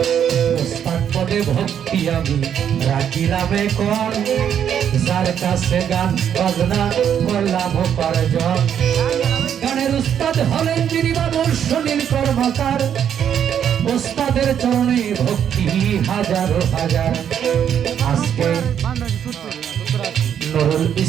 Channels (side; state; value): left; quieter; 8.9 dB